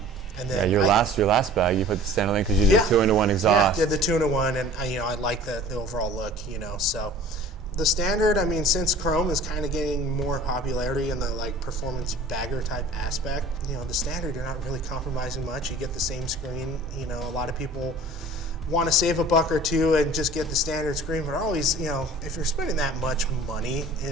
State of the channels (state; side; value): normal; both; correlation 0.45